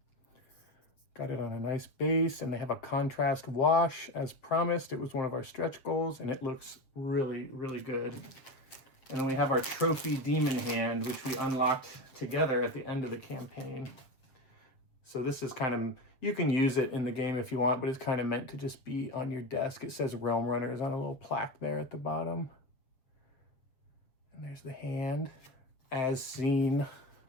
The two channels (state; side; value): late; right; 7.5 ms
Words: Got it on a nice base, and they have a contrast wash as promised. It was one of our stretch goals, and it looks really, really good. And then we have our trophy demon hand, which we unlocked together at the end of the campaign. So this is kind of, you can use it in the game if you want, but it's kind of meant to just be on your desk. It says Realm Runners on a little plaque there at the bottom. And there's the hand as seen